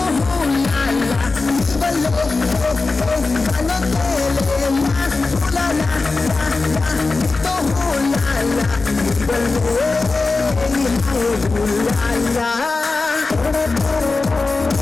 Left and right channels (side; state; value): right; quieter; 3.8 dB